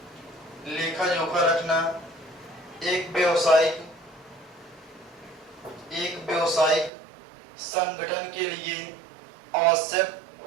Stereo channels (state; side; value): drops out; left; at 6.9 s